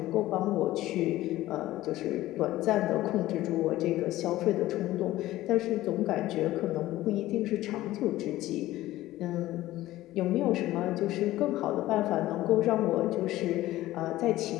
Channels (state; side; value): quieter; right; 15.9 dB